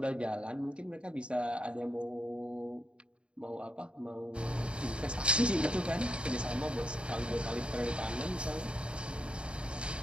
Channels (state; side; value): late; left; 0.055 ms